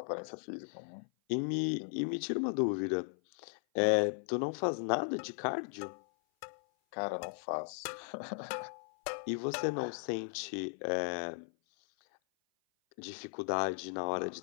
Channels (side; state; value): right; silent; 53 dB below the other